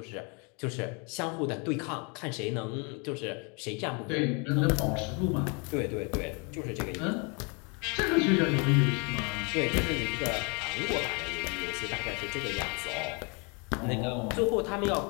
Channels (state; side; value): quieter; right; 33.1 dB